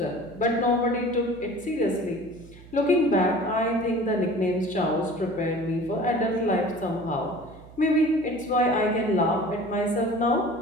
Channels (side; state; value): right; noise; hum, 20 dB below the sound